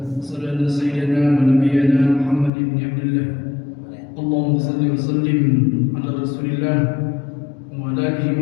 Asyhadu anna sayyidana wa nabiyyana Muhammad ibn Abdullah. Allahumma shalli wa sallim ala Rasulillah wa ala alihi wa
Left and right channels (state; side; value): drops out; right; at 2.5 s